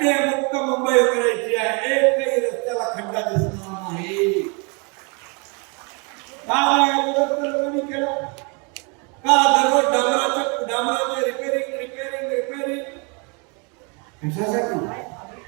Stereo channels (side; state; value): left; quieter; 33.3 dB